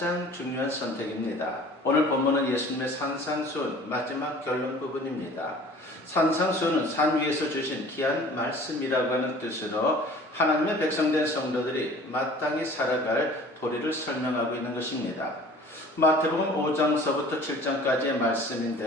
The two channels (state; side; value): normal; both; correlation 0.47